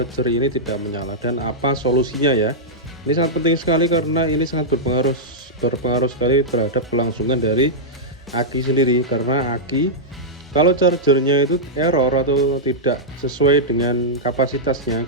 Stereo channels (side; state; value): both; normal; correlation -0.09